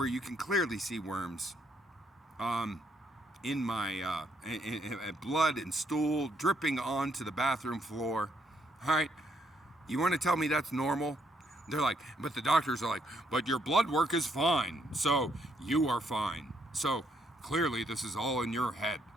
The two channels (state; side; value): normal; both; correlation 0.73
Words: you can clearly see worms. In my blood and stool dripping onto the bathroom floor. All right, you want to tell me that's normal? They're like, but the doctors are like, but your blood work is fine, so you are fine. So clearly this is all in your head.